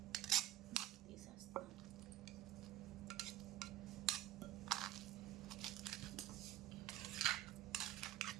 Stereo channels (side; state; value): left; quieter; 13.9 dB